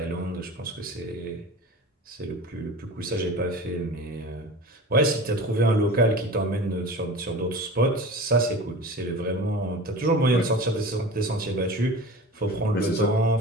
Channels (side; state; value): both; normal; correlation 0.36